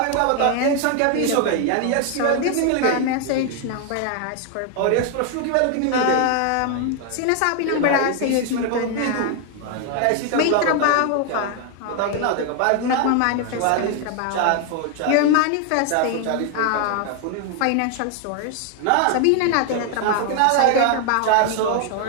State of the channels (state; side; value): different; both; correlation 0.01